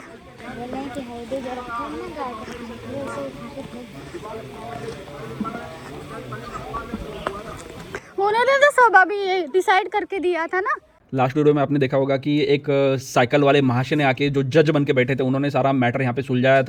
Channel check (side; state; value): both; identical; correlation 1.00